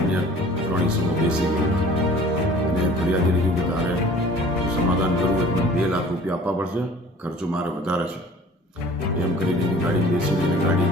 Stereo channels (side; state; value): both; normal; correlation 0.48